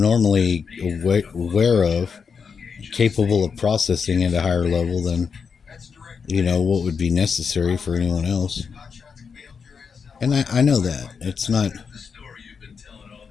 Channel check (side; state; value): right; quieter; 5.9 dB